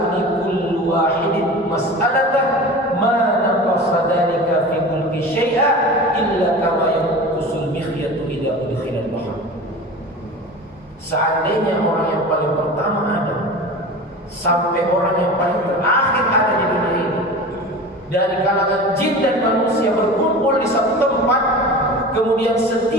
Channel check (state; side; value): normal; both; correlation 0.34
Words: kullu wahidin mas'alatan ma naqasa dhalika fi mulki syai'a illa kama yanqusul mikhyatu idza udkhila al-bahr. Seandainya orang yang paling pertama ada sampai orang yang paling terakhir ada di dunia ini, dari kalangan jin dan manusia berkumpul di satu tempat, kemudian